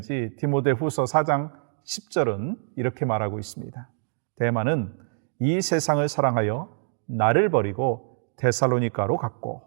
디모데후서 4장 10절은 이렇게 말하고 있습니다. 데마는 이 세상을 사랑하여 나를 버리고 데살로니가로 갔고.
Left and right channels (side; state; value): left; silent; digital silence